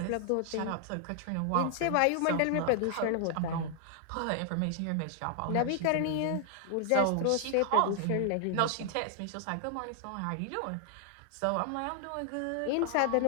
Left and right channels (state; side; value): different; both; correlation 0.00